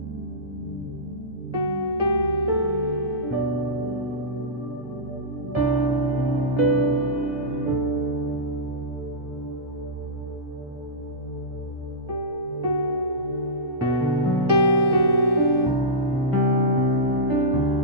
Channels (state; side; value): normal; both; correlation -0.15